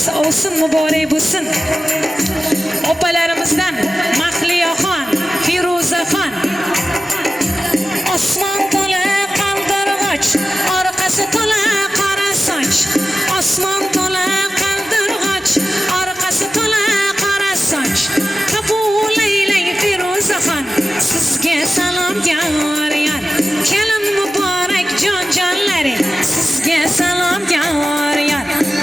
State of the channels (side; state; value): both; normal; correlation 0.95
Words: ovsin muborak bo'lsin. Opalarimizdan Mahliyaxon, Firuzaxon. Osmon to'la qaldirg'och, orqasi to'la qora soch. Osmon to'la qaldirg'och, orqasi to'la qora soch. Qabul aylang Firuzaxon, sizga salom yoryon. Kelin muborak jon-jonlari, sizga salom yoryon.